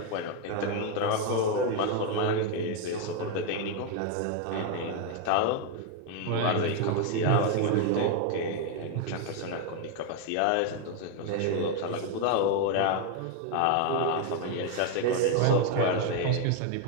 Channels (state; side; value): different; both; correlation 0.01